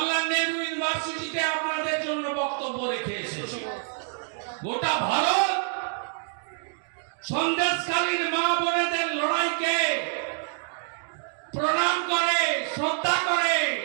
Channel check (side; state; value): left; silent; 60 dB below the other